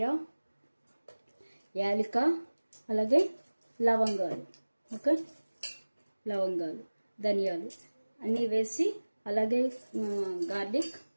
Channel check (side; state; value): both; inverted; correlation -1.00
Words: యాలక, అలాగే లవంగాలు. ఓకే, లవంగాలు, ధనియాలు అన్నీ వేసి, అలాగే గార్లిక్,